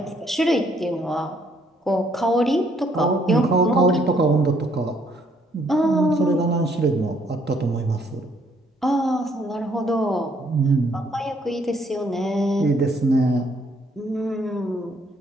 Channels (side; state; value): both; normal; correlation 0.67